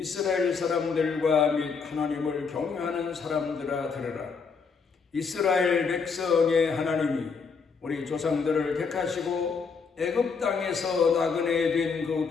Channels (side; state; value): right; quieter; 5.3 dB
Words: 사람들과 및 하나님을 경외하는 사람들아 들으라. 이스라엘 백성의 하나님이 우리 조상들을 택하시고 애굽 땅에서 나그네 된 그